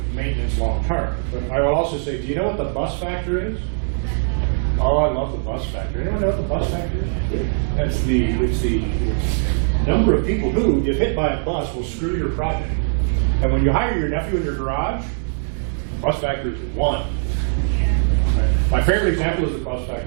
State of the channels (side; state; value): left; silent; digital silence